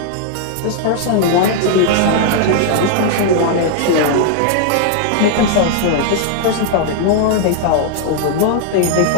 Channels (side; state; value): both; different; correlation 0.00